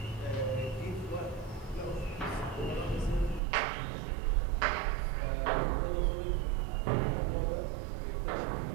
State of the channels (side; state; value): left; drops out; at 3.4 s